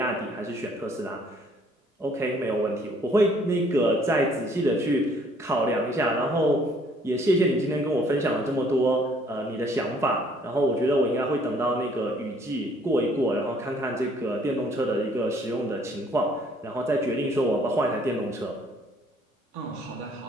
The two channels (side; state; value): both; normal; correlation 0.61